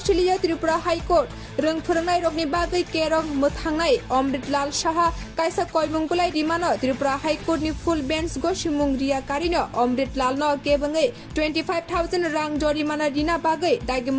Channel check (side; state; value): both; identical; correlation 1.00